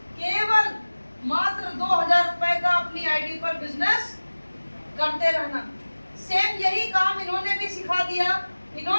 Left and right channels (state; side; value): inverted; both; correlation -1.00